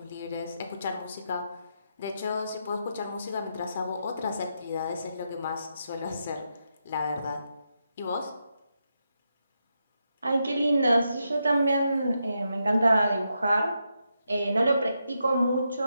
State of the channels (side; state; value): both; inverted; correlation -0.83